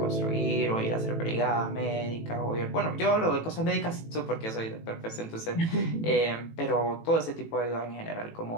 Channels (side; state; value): right; late; 18 ms